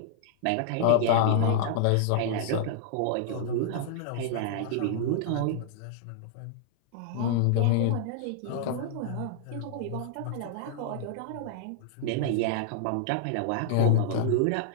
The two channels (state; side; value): different; both; correlation -0.01